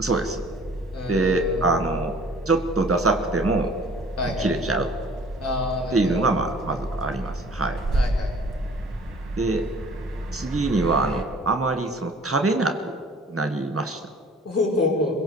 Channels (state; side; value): normal; both; correlation 0.51